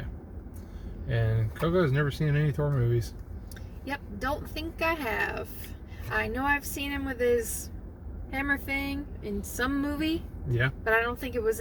And Coco has never seen any Thor movies. Yep, don't think I have. I know I've seen him with his hammer thing in some movie. Yeah. But I don't think it was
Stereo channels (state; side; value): identical; both; correlation 1.00